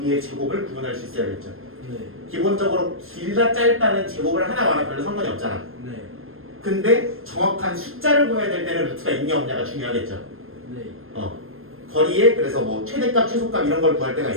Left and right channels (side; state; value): left; late; 0.60 ms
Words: 제곱을 구분할 수 있어야겠죠. 네. 기본적으로 길다 짧다는 제곱을 하나 말아 별로 상관이 없잖아. 네. 근데 정확한 숫자를 구해야 될 때는 루트가 있냐 없냐가 중요하겠죠. 네. 거리에 그래서 뭐 최대값 최소값 이런 걸 구할 때가